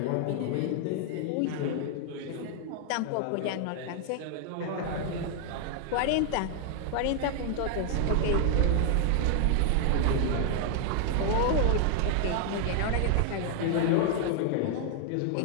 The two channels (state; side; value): different; both; correlation 0.00